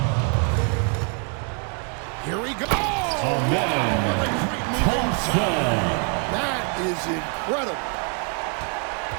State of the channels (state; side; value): quieter; left; 38.0 dB